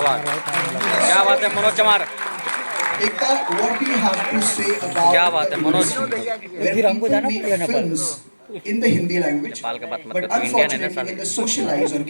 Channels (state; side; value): inverted; both; correlation -1.00